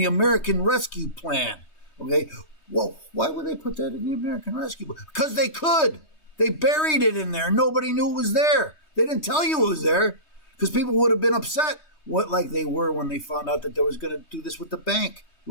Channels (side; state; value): right; late; 3.2 ms